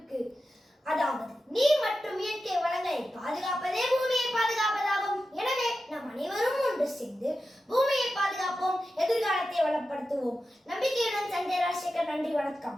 அதாவது நீர் மற்றும் இயற்கை வளங்களை பாதுகாப்பதே பூமியை பாதுகாப்பதாகும். எனவே நாம் அனைவரும் ஒன்று சேர்ந்து பூமியை பாதுகாப்போம், எதிர்காலத்தை வளப்படுத்துவோம். நம்பிக்கையுடன் சஞ்சய் ராஜசேகர். நன்றி,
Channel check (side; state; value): both; normal; correlation 0.92